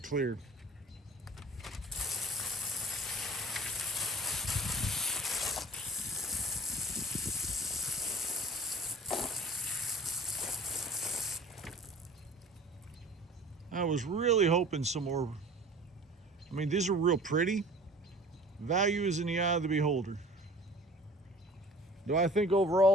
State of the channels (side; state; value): both; normal; correlation 0.45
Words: clear. I was really hoping some more. I mean, these are real pretty. Value is in the eye of the beholder. Do I think